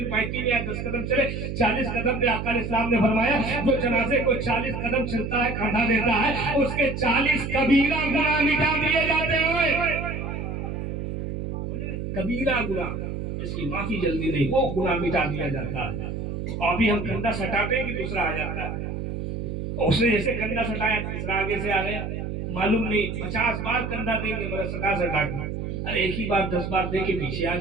پائتی میں آئے 10 قدم چلے. 40 قدم پہ آقا علیہ السلام نے فرمایا جو جنازے کو 40 قدم چلتا ہے, کاندھا دیتا ہے, اس کے 40 کبیرہ گناہ مٹا دیے جاتے ہیں. کبیرہ گناہ, اس کی معافی جلدی نہیں, وہ گناہ مٹا دیا جاتا ہے. اور ابھی ہم کندھا سٹاتے ہیں کہ دوسرا آ جاتا ہے. اس نے جیسے کندھا سٹایا, تیسرا آگے سے آ گیا, معلوم نہیں 50 بار کندھا دیں گے مگر سٹا کے. ارے ایک ہی بار 10 بار دے کے پیچھے آ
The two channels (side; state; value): right; noise; hum, 5 dB below the sound